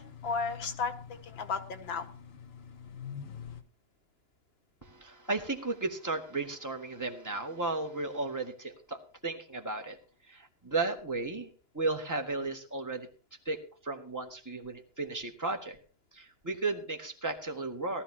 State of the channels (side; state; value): right; late; 2.9 ms